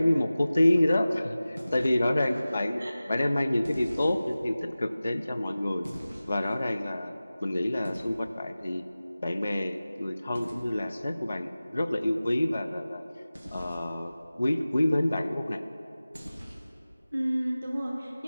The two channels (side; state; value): both; inverted; correlation -0.97